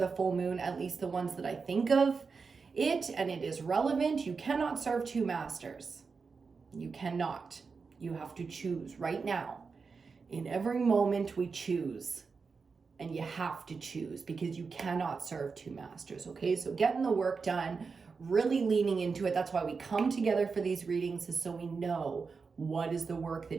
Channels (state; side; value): quieter; left; 5.0 dB